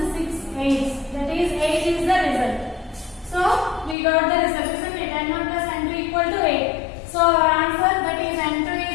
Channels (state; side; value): drops out; right; at 4.0 s